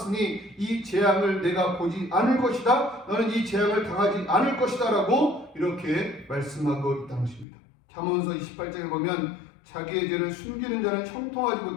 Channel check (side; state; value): right; drops out; at 7.5 s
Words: 이 재앙을 내가 보지 않을 것이다. 너는 이 재앙을 당하지 않을 것이다 라고 이렇게 말씀하고 있다는 것입니다. 잠언서 28장에 보면 자기의 죄를 숨기는 자는 형통하지